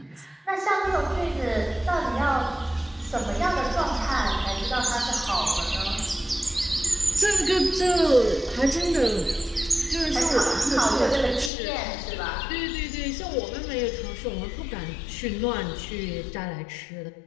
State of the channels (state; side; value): drops out; right; at 11.5 s